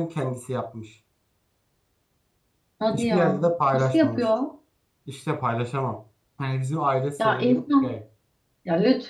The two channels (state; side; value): identical; both; correlation 1.00